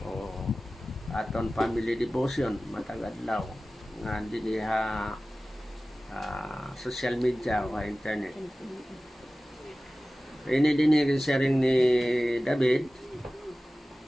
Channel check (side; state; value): both; normal; correlation 0.96